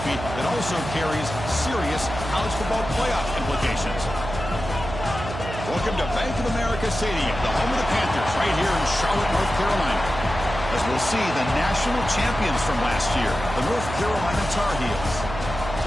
that also carries serious college football playoff implications. Welcome to Bank of America Stadium, the home of the Panthers, right here in Charlotte, North Carolina. As we'll see the national champions from last year, the North Carolina Tar Heels,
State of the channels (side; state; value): right; noise; hum, 8 dB below the sound